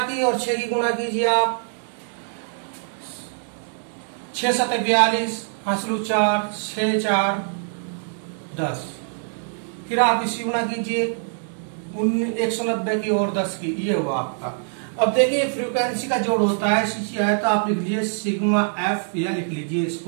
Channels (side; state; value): left; silent; 63 dB below the other